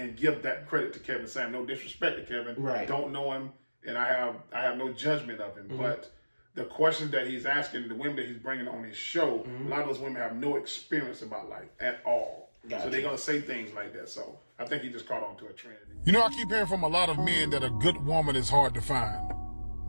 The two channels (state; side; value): inverted; both; correlation -1.00